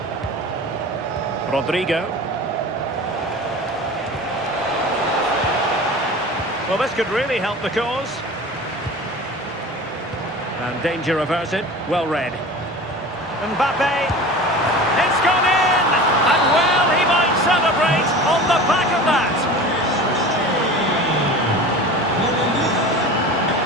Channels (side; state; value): both; normal; correlation 0.36